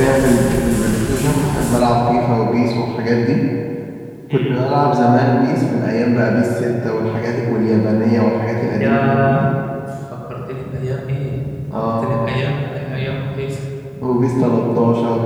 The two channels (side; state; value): both; identical; correlation 1.00